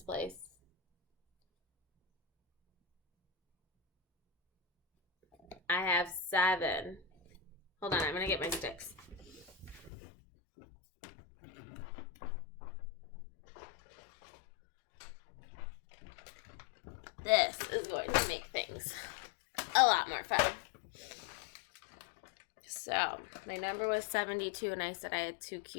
place. I have 7. Hold on, I'm going to get my sticks. This is going to make things a lot more fun. So, my number was 72 and I said I had 2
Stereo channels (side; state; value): right; drops out; at 9.9 s